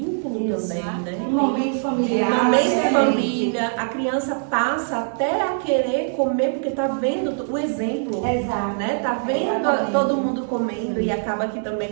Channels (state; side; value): silent; left; digital silence